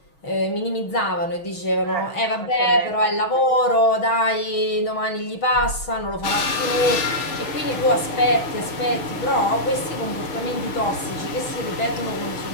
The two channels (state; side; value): late; right; 6.3 ms